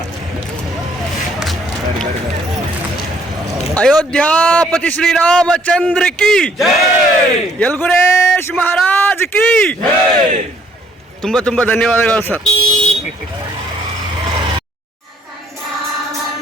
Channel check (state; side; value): normal; both; correlation 0.64